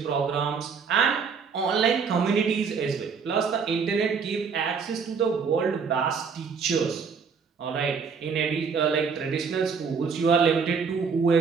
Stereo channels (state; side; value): quieter; left; 5.8 dB